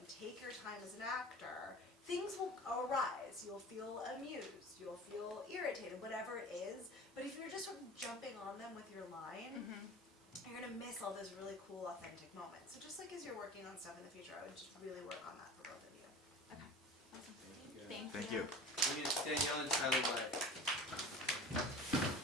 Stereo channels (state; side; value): normal; both; correlation 0.37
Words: take your time as an actor, things will arise. You'll feel amused, you'll feel irritated, whatever it is. But if you're just sort of jumping on them with your line, you're gonna miss all those really cool, authentic moments. So just as you're working on stuff in the future, I would just really work on that for both of you. Okay. Awesome. Yeah. Thank you. Thank you. We need Danielle and Tyler White.